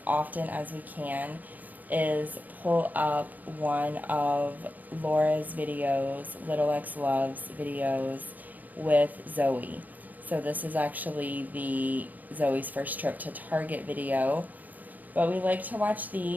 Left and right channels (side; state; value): left; late; 0.081 ms